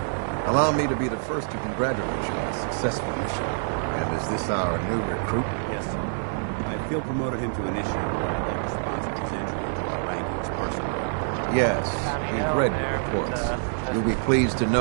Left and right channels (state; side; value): silent; left; digital silence